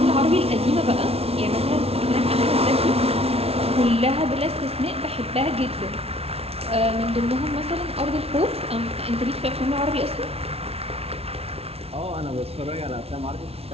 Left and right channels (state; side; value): late; left; 0.30 ms